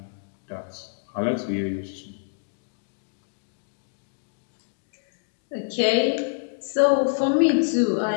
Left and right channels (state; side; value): silent; right; digital silence